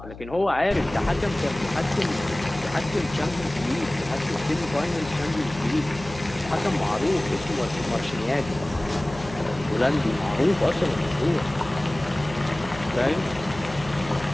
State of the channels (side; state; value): left; noise; hum, 15 dB below the sound